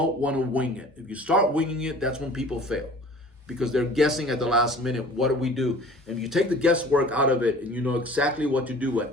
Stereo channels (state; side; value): normal; both; correlation 0.46